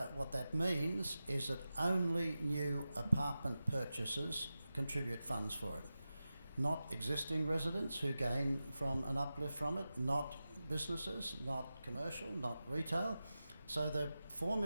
What that means is that only new apartment purchasers contribute funds for it. Not existing residents who gain from an uplift from it, not businesses, not commercial, not retail. So the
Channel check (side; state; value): both; inverted; correlation -0.94